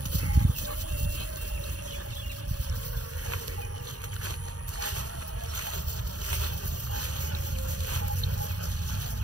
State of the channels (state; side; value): late; left; 0.68 ms